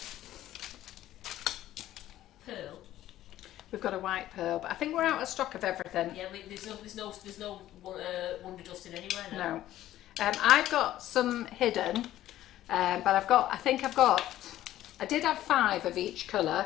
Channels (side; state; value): right; quieter; 13.6 dB